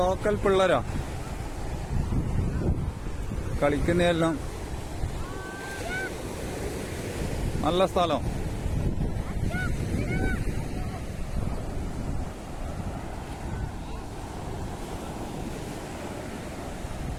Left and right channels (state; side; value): identical; both; correlation 1.00